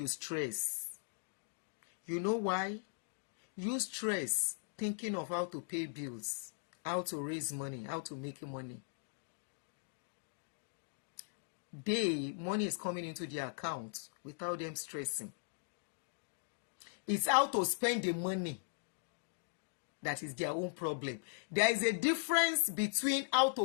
stress. You know why? You stress thinking of how to pay bills, how to raise money, how to make money. Money is coming into their account without them stressing. It's how to spend the money that is their own problem. There is a difference between how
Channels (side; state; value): right; silent; digital silence